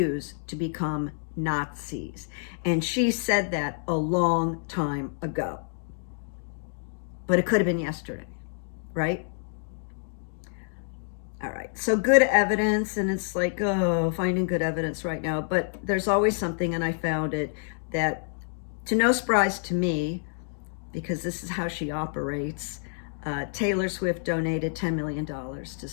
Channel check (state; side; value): silent; right; 59 dB below the other